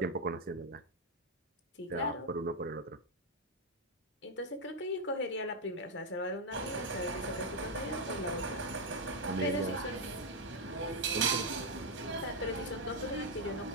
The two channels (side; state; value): both; normal; correlation 0.00